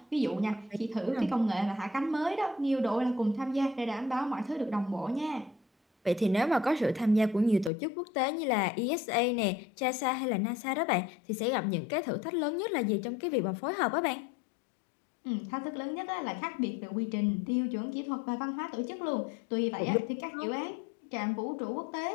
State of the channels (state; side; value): drops out; right; at 7.7 s